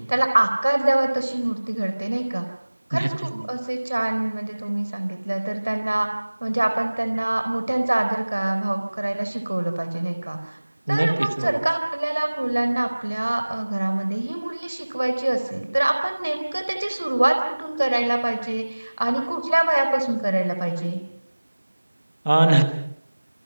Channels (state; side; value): inverted; both; correlation -1.00